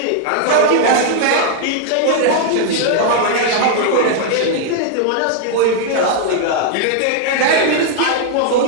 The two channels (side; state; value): both; different; correlation 0.00